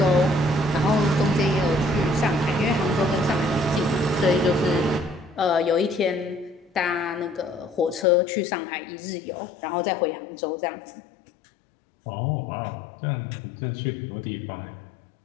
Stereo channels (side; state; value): right; drops out; at 8.1 s